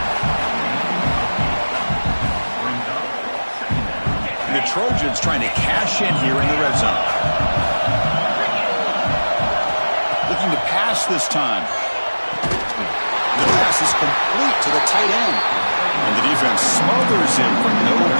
The Trojans trying to cash in here in the red zone. Looking to pass this time. The pass is complete to the tight end. And the defense smothers him for no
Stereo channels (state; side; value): inverted; both; correlation -1.00